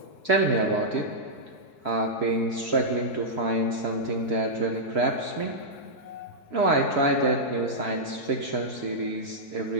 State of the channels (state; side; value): late; right; 4.6 ms